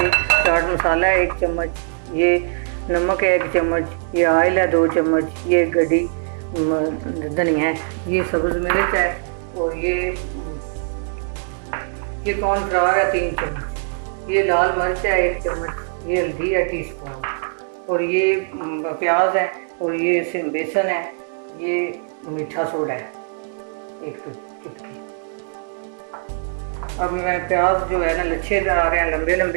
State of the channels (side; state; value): left; silent; digital silence